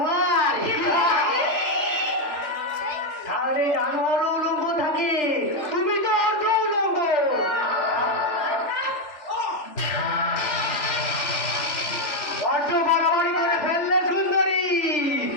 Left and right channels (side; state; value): right; late; 3.4 ms